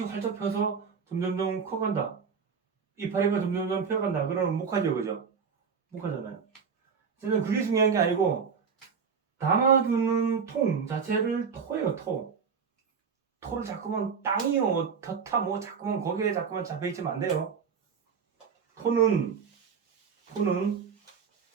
활짝 펴서 점점점 커간다. 이파리가 점점점 펴간다. 그러면 목하죠, 그죠? 목하잖아요. 저는 그게 중요한 게 아니고, 담아두는 통 자체를 토예요, 토. 토를 자꾸만 땅이요, 터타, 자꾸만 거기에 자꾸만 잡혀있으면 안 돼요. 토는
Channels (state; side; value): quieter; left; 6.0 dB